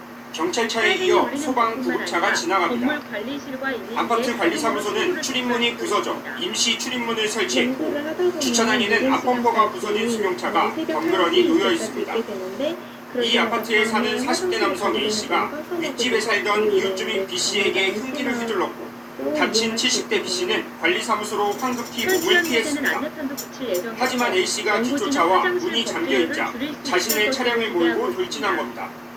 경찰차에 이어 소방 구급차가 지나갑니다. 아파트 관리사무소는 출입문이 부서져 임시 출입문을 설치했고 주차장에는 앞범퍼가 부서진 승용차가 덩그러니 놓여 있습니다. 이 아파트에 사는 40대 남성 A씨가 윗집에 살던 이웃주민 B씨에게 흉기를 휘둘렀고 다친 70대 B씨는 관리사무소로 황급히 몸을 피했습니다. 하지만 A씨가 뒤쫓아와 문이 잠겨있자 자신의 차량을 몰고 돌진한 겁니다.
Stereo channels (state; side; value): identical; both; correlation 1.00